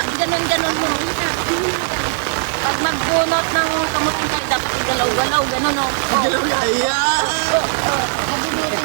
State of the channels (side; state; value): left; silent; digital silence